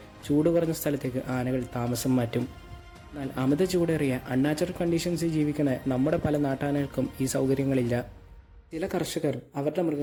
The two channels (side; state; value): both; identical; correlation 1.00